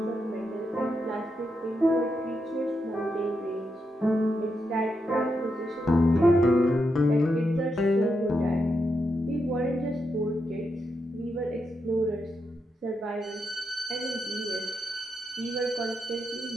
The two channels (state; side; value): normal; both; correlation 0.84